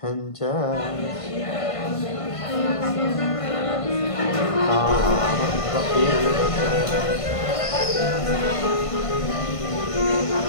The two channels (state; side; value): late; right; 1.5 ms